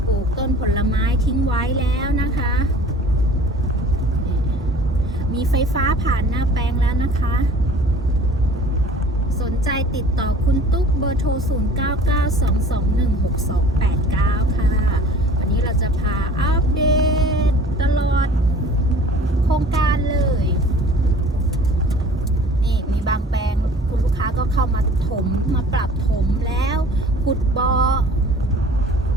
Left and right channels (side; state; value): both; normal; correlation 0.47